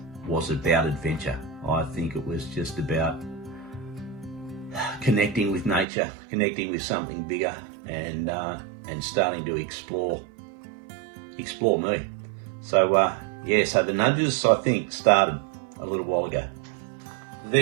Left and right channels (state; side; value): drops out; left; at 5.9 s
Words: was about adventure. I think it was just about connecting with nature, connecting with something bigger, and starting to explore me. So yeah, so the nudges, I think, started a little while ago.